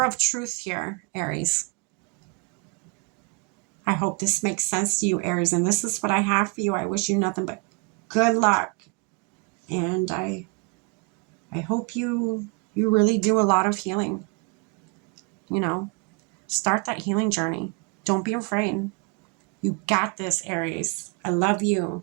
of truth here, Aries. I hope this makes sense to you, Aries. And this is what I have for you. I wish you nothing but good luck. And I hope you really do a lot of healing. Start that healing journey. Don't be afraid. You got this, Aries. I love you.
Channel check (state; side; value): quieter; left; 30.5 dB